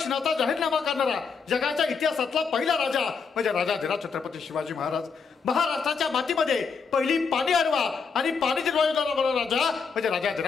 जाहीरनामा करणारा जगाच्या इतिहासातला पहिला राजा म्हणजे राजाधिराज छत्रपती शिवाजी महाराज. महाराष्ट्राच्या मातीमध्ये पहिली पाणी अडवा आणि पाणी जिरवायला राजा म्हणजे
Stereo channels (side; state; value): right; quieter; 5.5 dB